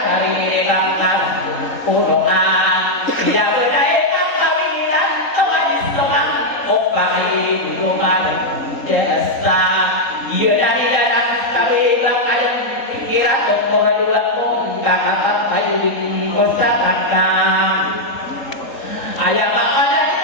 ang karan puno nga pinabunay ang kawilan kawalis lumang opa ay luman jasa iya na nila ng kabilang ayang pikiran kung koradula kong kakatat tayo din ko sa kakang ayang makalan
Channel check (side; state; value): right; late; 3.8 ms